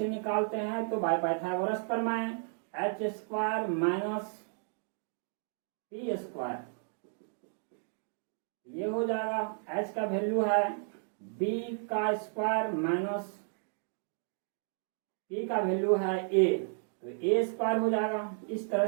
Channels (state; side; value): silent; left; 56 dB below the other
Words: निकालते हैं। तो बाय पाइथागोरस प्रमेय H² माइनस P²। ये हो जाएगा H का वैल्यू है B का स्क्वायर माइनस P का वैल्यू है A, तो A² हो जाएगा। इस तरह